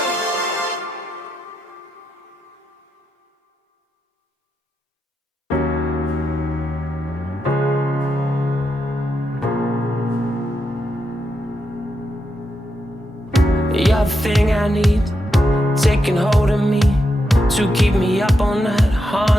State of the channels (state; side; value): normal; both; correlation 0.84